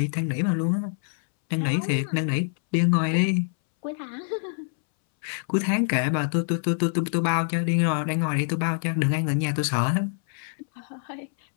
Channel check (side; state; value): right; silent; 61 dB below the other